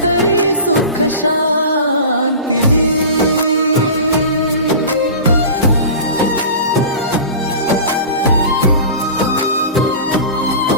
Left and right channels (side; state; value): both; inverted; correlation -0.34